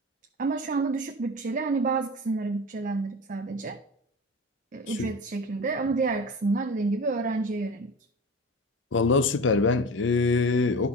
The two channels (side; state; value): both; normal; correlation 0.32